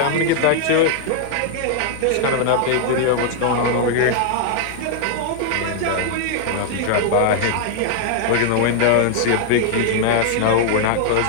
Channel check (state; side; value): different; both; correlation -0.01